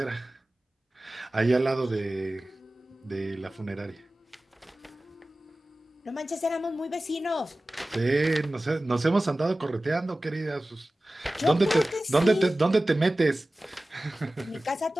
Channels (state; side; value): normal; both; correlation 0.97